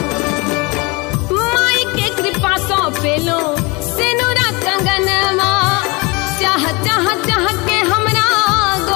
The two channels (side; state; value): right; quieter; 26.7 dB